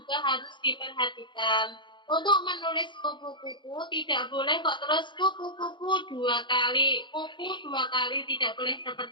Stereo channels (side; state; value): right; late; 0.23 ms